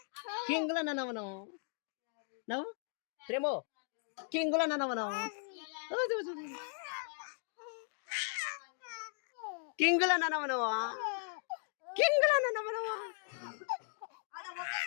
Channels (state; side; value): silent; right; 53 dB below the other